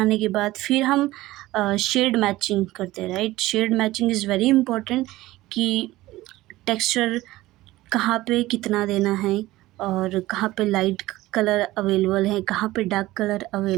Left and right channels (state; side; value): quieter; left; 17.5 dB